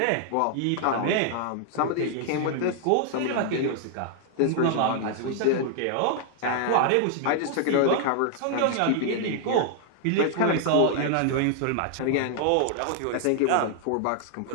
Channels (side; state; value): both; different; correlation 0.00